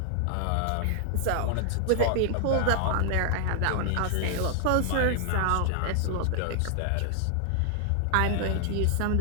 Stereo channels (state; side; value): different; both; correlation 0.00